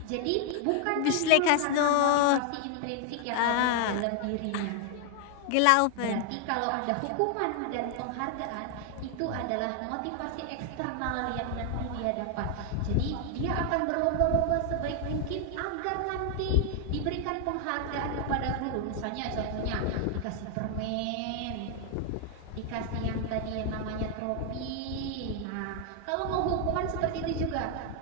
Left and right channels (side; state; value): both; different; correlation 0.00